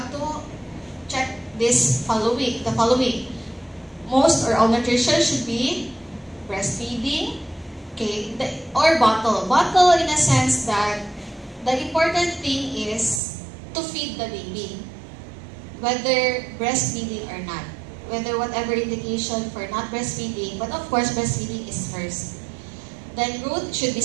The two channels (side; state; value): left; drops out; at 13.2 s